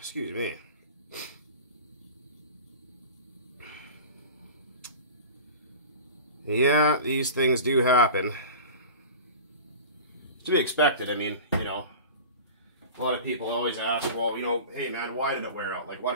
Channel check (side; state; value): both; inverted; correlation -0.35